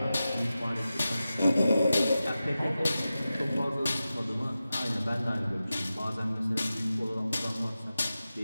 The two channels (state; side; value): inverted; both; correlation -0.94